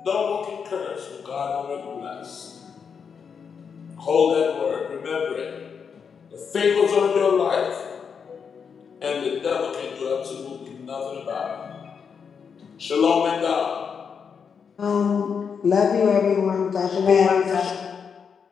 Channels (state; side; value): quieter; right; 6.5 dB